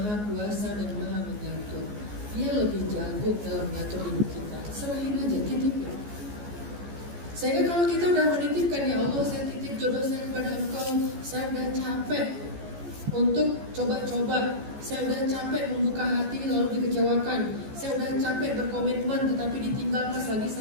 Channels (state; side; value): late; left; 14 ms